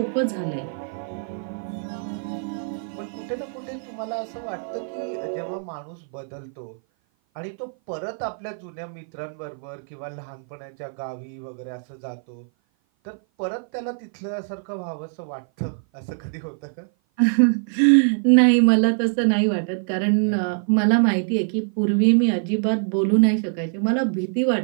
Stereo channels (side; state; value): left; silent; 56 dB below the other